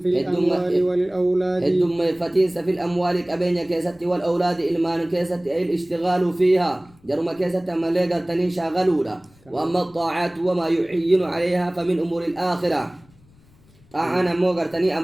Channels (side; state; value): left; noise; rumble, 29 dB below the sound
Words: في الأموال والأولاد الدم فتين في الأموال كبين كيست والأولاد إلمان كيست أي الاشتغال فيها جرم كيست ما لقر تني شاغلونا وأما الطاعات وما يعين عليها فمن أمور الآخرة طاعنا موغر تني